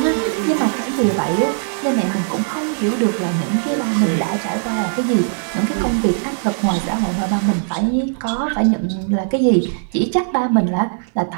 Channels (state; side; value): silent; left; digital silence